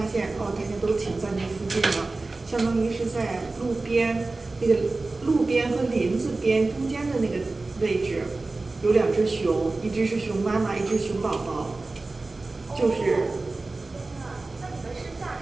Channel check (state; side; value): quieter; left; 3.4 dB